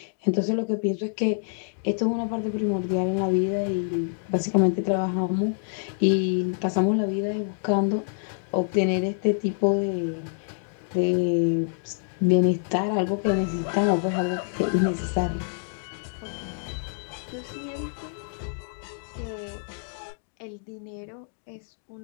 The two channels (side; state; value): right; silent; digital silence